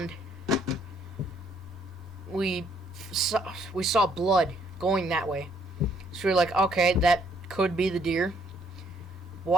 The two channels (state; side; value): normal; both; correlation 0.67